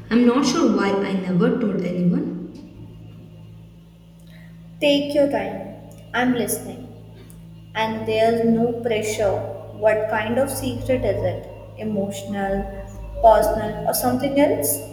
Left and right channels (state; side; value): identical; both; correlation 1.00